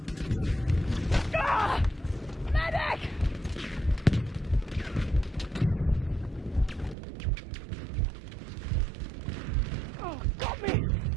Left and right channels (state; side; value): drops out; left; at 7.0 s